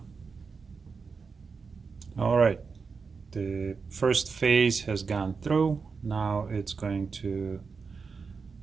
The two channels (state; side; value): quieter; left; 5.1 dB